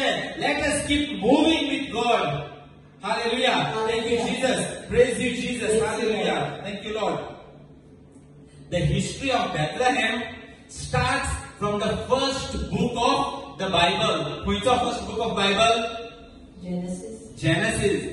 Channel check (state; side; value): identical; both; correlation 1.00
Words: let us keep moving with God. Hallelujah. Thank you, Jesus. Praise you, Jesus. Hallelujah. Thank you, Lord. the history of Bethlehem starts from the first book of the Bible. Which of first book of Bible?